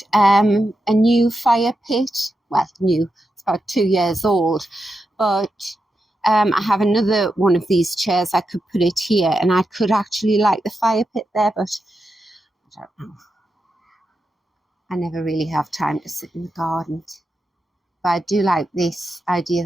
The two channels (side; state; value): both; normal; correlation 0.87